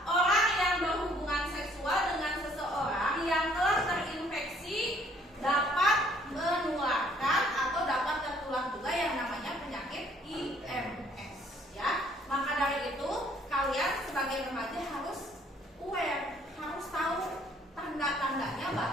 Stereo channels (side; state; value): both; normal; correlation 0.61